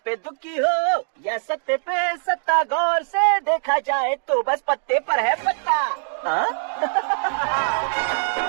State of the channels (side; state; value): left; silent; 64 dB below the other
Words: दुखी हो या सत्ते पे सत्ता, गौर से देखा जाए तो बस पत्ते पर है पत्ता।